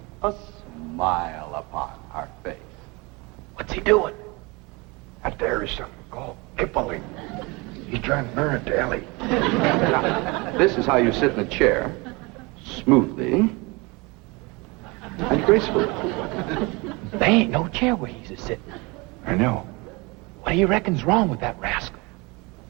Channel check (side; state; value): left; quieter; 26.4 dB